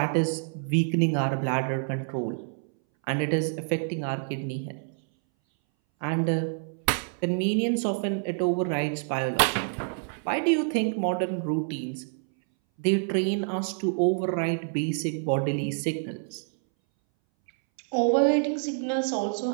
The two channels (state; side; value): silent; left; 60 dB below the other